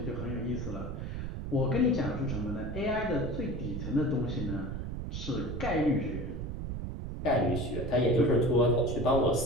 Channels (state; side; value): noise; right; rumble, 5 dB below the sound